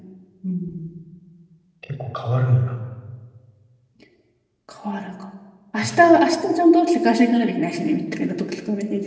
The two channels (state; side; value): identical; both; correlation 1.00